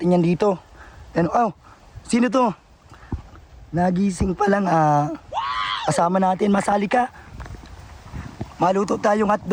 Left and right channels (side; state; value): both; identical; correlation 1.00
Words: yan dito. Sino to? Nagising pa lang, kasama natin, masali ka. Maluto tayong